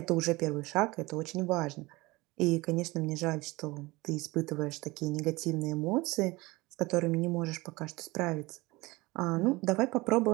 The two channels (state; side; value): quieter; left; 22.0 dB